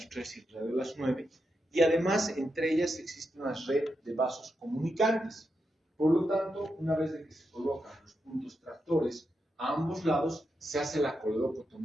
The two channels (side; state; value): both; normal; correlation 0.85